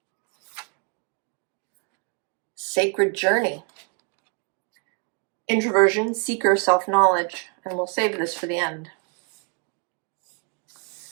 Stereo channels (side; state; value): left; quieter; 34.8 dB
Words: Sacred Journey. Introversion, seeker, self-knowledge. And we'll save this for the end.